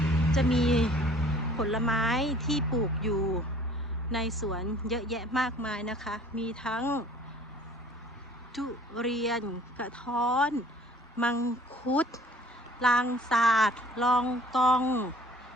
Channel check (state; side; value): normal; both; correlation 0.52